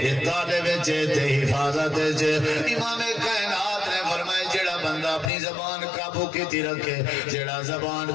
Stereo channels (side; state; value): right; drops out; at 5.3 s